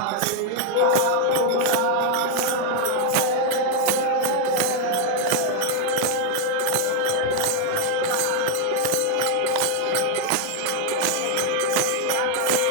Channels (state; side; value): different; both; correlation 0.01